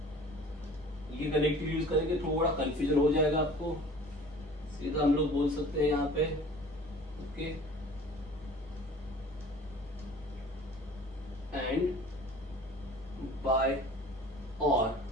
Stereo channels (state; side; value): normal; both; correlation 0.45